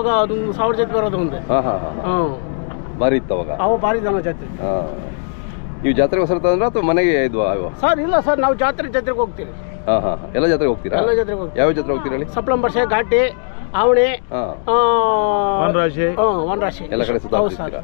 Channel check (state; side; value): silent; right; digital silence